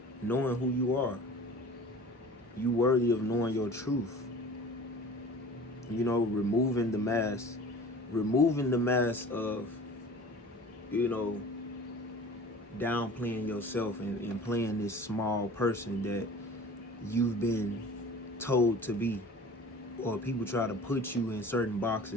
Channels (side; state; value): both; normal; correlation 0.42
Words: knowing who you are. You worthy of knowing your truth. You know, removing the mask of, you know, downplaying yourself and playing this small person that you've been told to be. Or people try to put you in certain